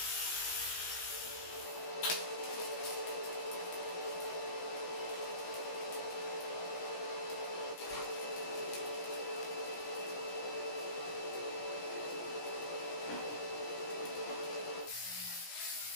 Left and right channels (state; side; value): late; right; 17 ms